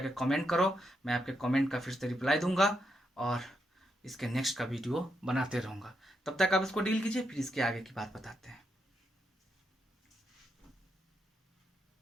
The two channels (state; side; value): normal; both; correlation 0.82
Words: कमेंट करो, मैं आपके कमेंट का फिर से रिप्लाई दूंगा और इसके नेक्स्ट का वीडियो बनाते रहूँगा। तब तक आप इसको डील कीजिए, फिर इसके आगे की बात बताते हैं।